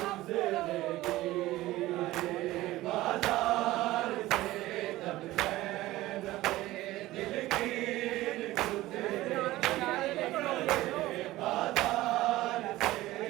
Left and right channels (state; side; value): quieter; left; 17.1 dB